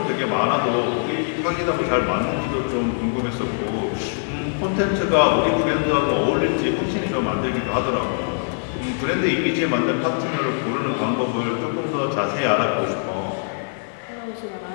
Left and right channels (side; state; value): right; silent; digital silence